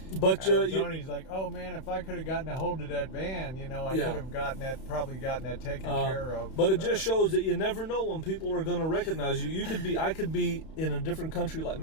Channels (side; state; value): right; late; 31 ms